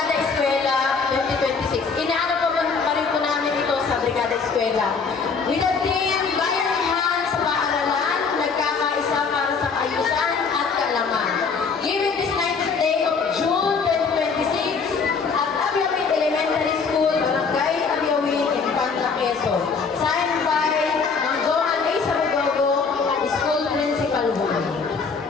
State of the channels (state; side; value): quieter; right; 5.2 dB